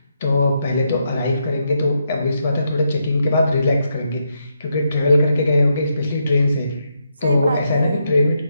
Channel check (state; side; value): inverted; both; correlation -0.81